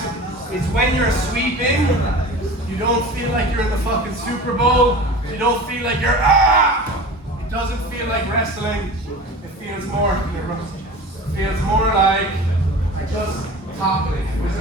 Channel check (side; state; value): both; normal; correlation 0.36